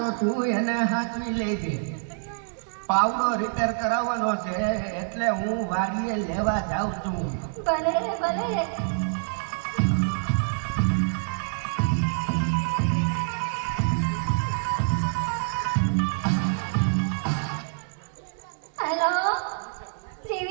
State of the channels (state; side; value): silent; left; 61 dB below the other